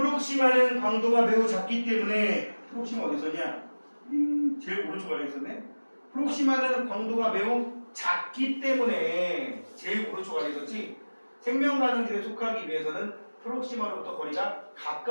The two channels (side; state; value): both; inverted; correlation -1.00